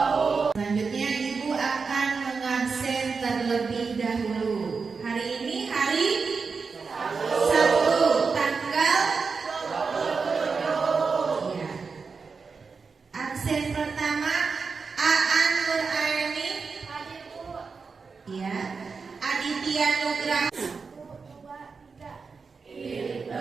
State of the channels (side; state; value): left; quieter; 4.9 dB